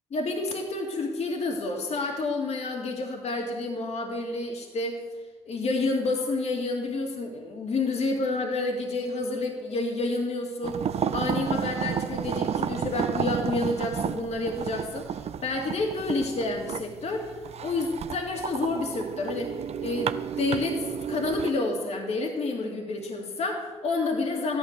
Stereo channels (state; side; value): normal; both; correlation 0.51